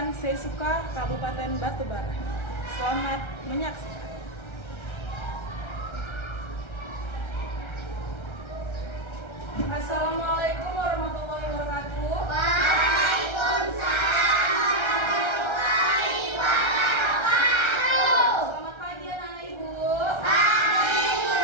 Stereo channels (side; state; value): right; late; 1.3 ms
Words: Sesuka, Kabupaten Batubara. Selamat menyaksikan. Assalamualaikum warahmatullahi wabarakatuh. Waalaikumsalam. Selamat pagi anak-anak ibu.